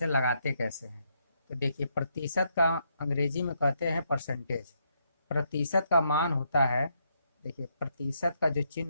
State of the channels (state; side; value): inverted; both; correlation -0.76